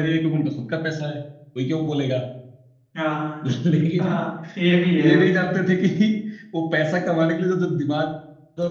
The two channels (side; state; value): both; identical; correlation 1.00